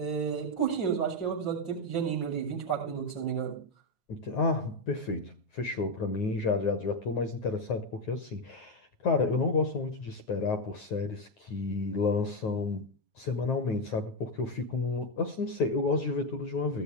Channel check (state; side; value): late; right; 9.4 ms